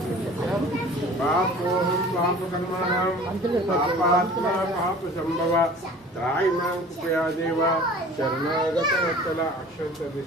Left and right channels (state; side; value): normal; both; correlation 0.45